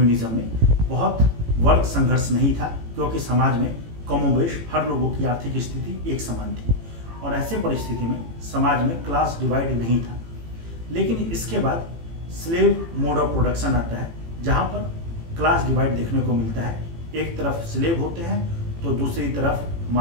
में बहुत वर्ग संघर्ष नहीं था, क्योंकि समाज में कमोबेश हर लोगों की आर्थिक स्थिति एक समान थी और ऐसे परिस्थिति में समाज में क्लास डिवाइड नहीं था। लेकिन इसके बाद स्लेव मोड ऑफ प्रोडक्शन आता है, जहाँ पर क्लास डिवाइड देखने को मिलता है। एक तरफ स्लेव होते हैं तो दूसरी तरफ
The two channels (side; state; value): left; late; 18 ms